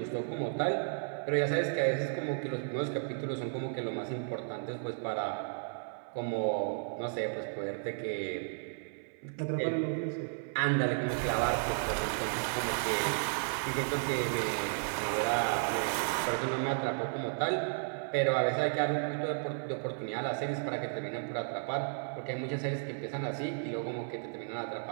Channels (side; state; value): left; silent; 55 dB below the other